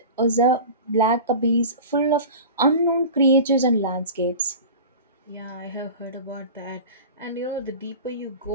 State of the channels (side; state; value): both; inverted; correlation -0.35